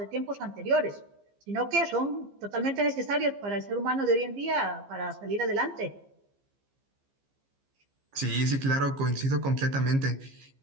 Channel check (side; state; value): left; late; 15 ms